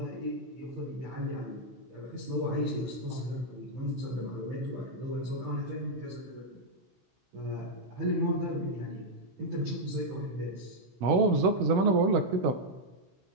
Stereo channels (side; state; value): left; late; 16 ms